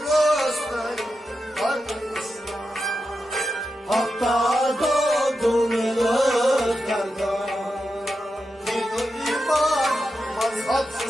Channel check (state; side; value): normal; both; correlation 0.89